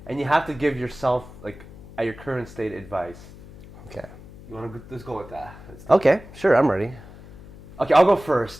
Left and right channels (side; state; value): left; noise; hum, 18 dB below the sound